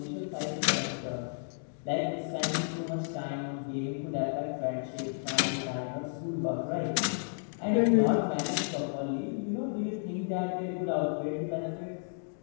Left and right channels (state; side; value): silent; right; digital silence